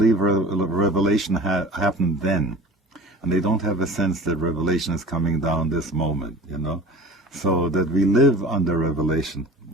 revelation happened then. And they don't have a sense that revelation is coming down this moment, you know? So that we live under revelation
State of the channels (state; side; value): normal; both; correlation 0.39